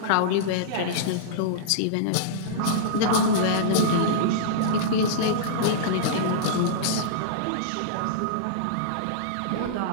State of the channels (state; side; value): different; both; correlation -0.03